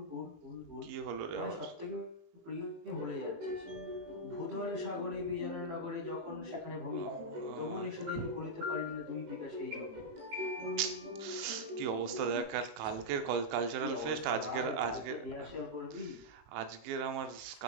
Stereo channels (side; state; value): left; late; 19 ms